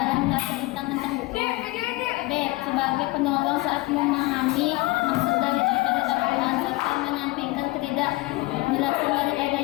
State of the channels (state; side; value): quieter; right; 21.6 dB